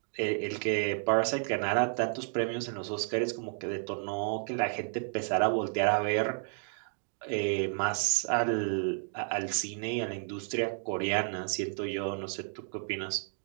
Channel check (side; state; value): left; silent; 57 dB below the other